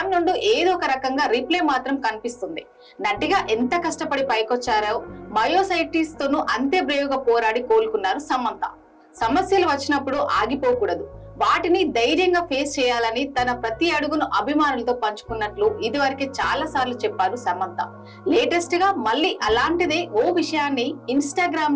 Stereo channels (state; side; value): identical; both; correlation 1.00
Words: నుండి ఏదో ఒక రకంగా రిప్లై మాత్రం కనిపిస్తుంది. నటిగా ఎంత కష్టపడి పైకొచ్చారో, మయోసైటిస్ తోనూ అంతే బ్రేవ్ గా పోరాడి కోలుకున్నారు సమంత. సమస్యలు వచ్చినప్పుడు ఆగిపోకూడదు, వాటిని ధైర్యంగా ఫేస్ చేయాలని తన ప్రతి అడుగును అభిమానులతో పంచుకున్నట్లు ఇదివరకే చాలా సార్లు చెప్పారు సమంత. లేటెస్ట్ గా మళ్ళీ అలాంటిదే ఓ విషయాన్ని